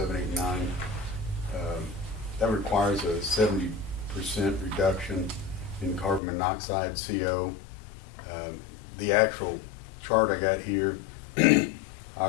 That requires a 70% reduction in carbon monoxide, CO. The actual chart I got here,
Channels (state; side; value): drops out; right; at 6.2 s